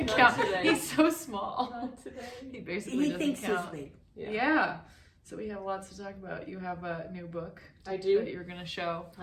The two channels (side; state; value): both; identical; correlation 1.00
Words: count. Today. He's so small. Not today. He basically doesn't thinks count. he's big. Yeah. So we have lots to talk about. You have a new book. I do. That you're gonna show.